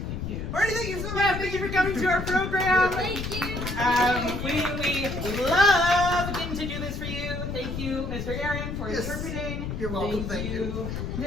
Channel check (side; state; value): left; noise; rumble, 5 dB below the sound